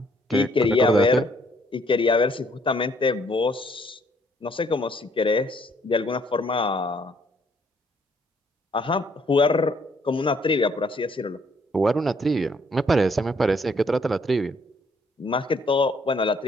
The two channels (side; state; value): both; normal; correlation 0.66